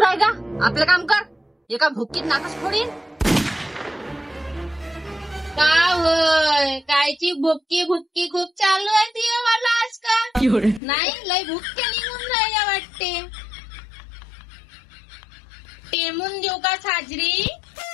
का, आपलं काम कर. एका भुक्कीत नाकच फोडीन. का होय, कायची भुक्की भुक्की खूप चालू आहे ती मला आजकाल. नाही, लय भुक्के निघून राहिल्या वाटते. टेमून देऊ का साजरी?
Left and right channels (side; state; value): right; drops out; at 10.8 s